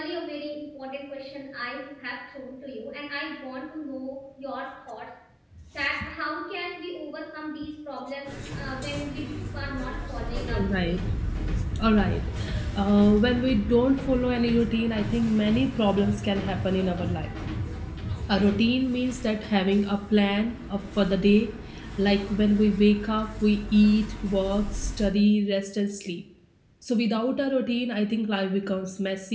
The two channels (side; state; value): both; identical; correlation 1.00